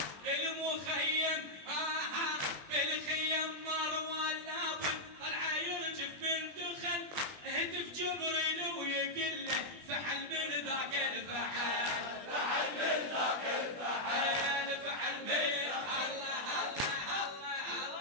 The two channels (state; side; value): late; left; 20 ms